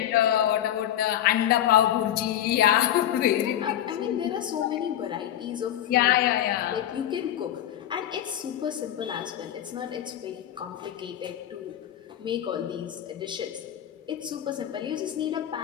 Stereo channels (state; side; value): quieter; right; 11.4 dB